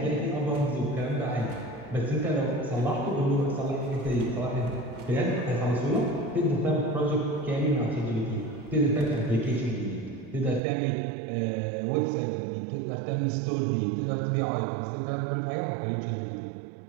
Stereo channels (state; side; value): drops out; left; at 10.6 s